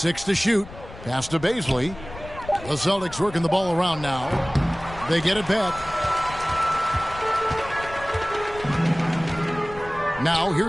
to shoot. Pass to Baisley. The Celtics working the ball around now. They get it back. Now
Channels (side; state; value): left; noise; rumble, 15 dB below the sound